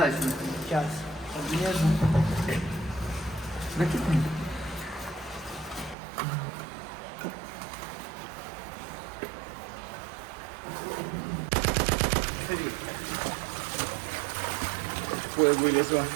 Сейчас. Отрежу. Ой, вылезло.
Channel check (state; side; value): drops out; left; at 6.0 s